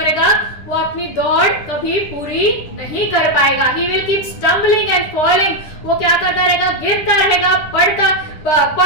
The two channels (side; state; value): right; late; 9.9 ms